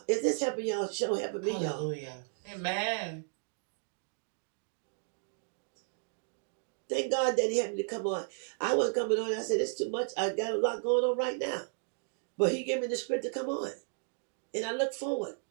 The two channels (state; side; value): silent; left; digital silence